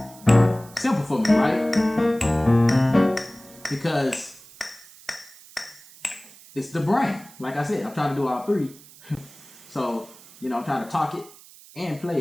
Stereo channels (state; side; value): noise; right; hiss, 22 dB below the sound